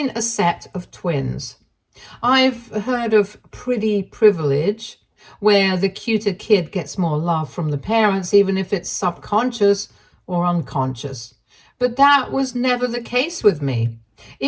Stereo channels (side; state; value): both; identical; correlation 1.00